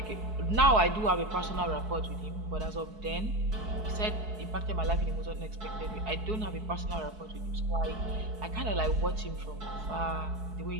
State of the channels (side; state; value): left; late; 4.6 ms